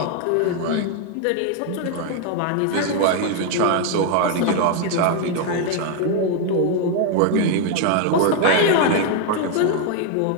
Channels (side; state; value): both; different; correlation 0.01